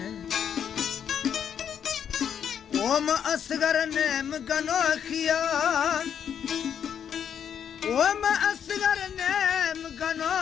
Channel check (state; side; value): quieter; right; 8.4 dB